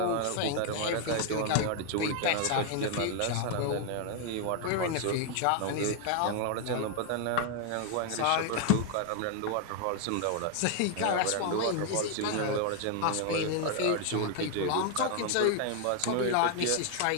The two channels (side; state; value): both; different; correlation 0.00